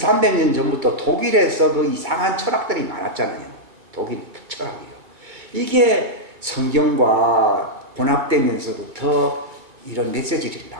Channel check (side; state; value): left; late; 2.2 ms